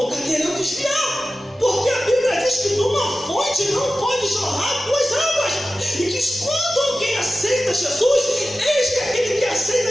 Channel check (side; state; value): both; normal; correlation 0.94